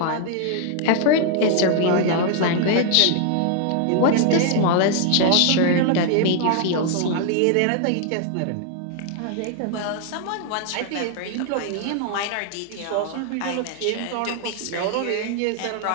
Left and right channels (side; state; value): both; different; correlation 0.00